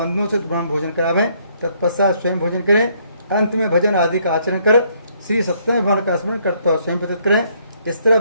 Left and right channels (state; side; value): inverted; both; correlation -0.68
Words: से ब्रह्म भोजन करावें। तत्पश्चात स्वयं भोजन करें। अंत में भजन आदि का आचरण कर श्री सत्यनारायण भगवान का स्मरण करता हुआ स्वयं व्यतीत करें। इस तरह